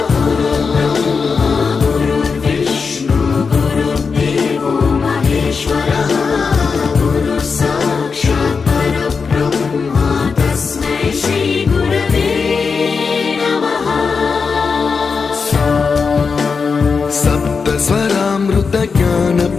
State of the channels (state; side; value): quieter; right; 5.2 dB